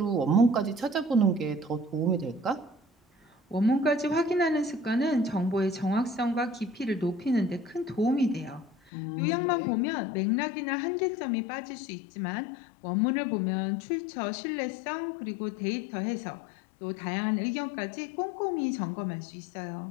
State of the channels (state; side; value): drops out; right; at 8.8 s